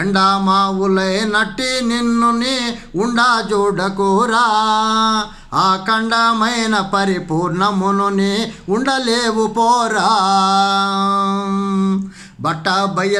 ఎండా మావులై నట్టి నిన్నుని ఉండా చూడకూరా. ఆ ఖండమైన పరిపూర్ణమునుని ఉండలేవు పోరా. బట్ట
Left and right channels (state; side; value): identical; both; correlation 1.00